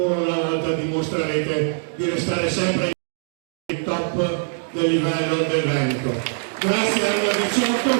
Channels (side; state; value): left; silent; digital silence